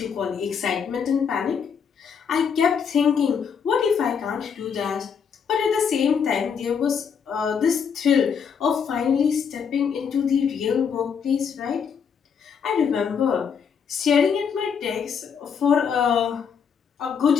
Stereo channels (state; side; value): quieter; right; 6.8 dB